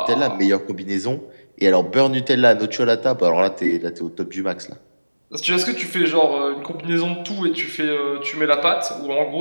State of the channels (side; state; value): both; inverted; correlation -1.00